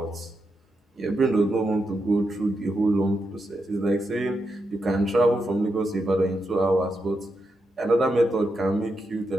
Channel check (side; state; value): both; normal; correlation 0.85